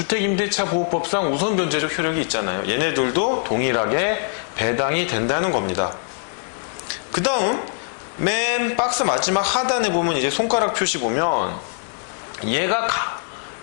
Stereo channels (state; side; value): silent; right; digital silence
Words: 보호법상 우선변제적 효력이 있잖아요. 얘네들도 동일하게 배당이 된다는 겁니다. 그 다음 맨 박스 마지막 하단에 보면 이제 손가락 표시 보면 얘가